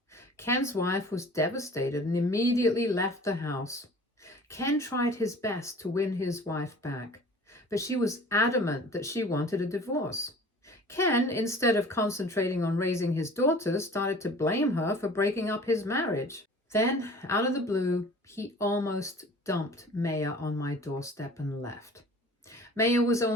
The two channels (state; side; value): normal; both; correlation 0.45